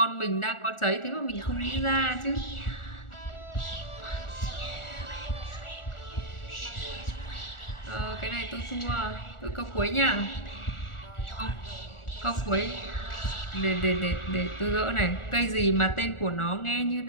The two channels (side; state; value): right; late; 1.4 ms